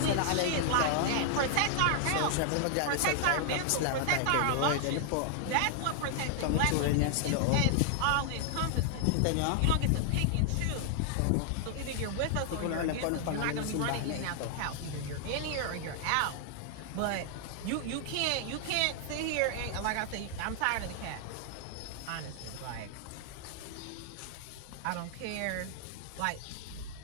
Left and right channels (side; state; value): both; different; correlation 0.00